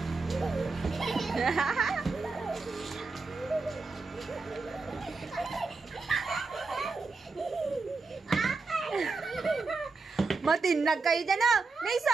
Matinag kayo dyan, ah!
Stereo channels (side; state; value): left; quieter; 4.0 dB